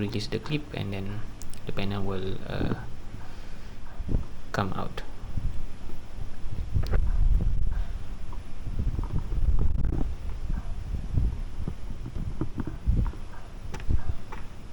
the clip, and then the panel will come out.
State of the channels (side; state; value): both; identical; correlation 1.00